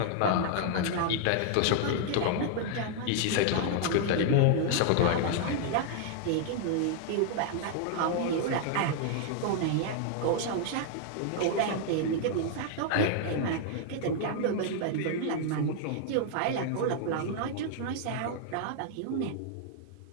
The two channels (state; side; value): different; both; correlation -0.01